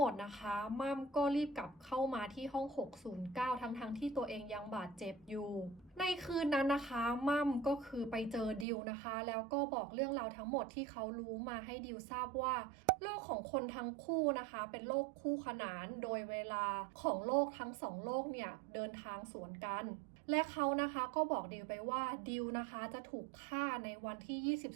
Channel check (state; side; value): drops out; left; at 8.7 s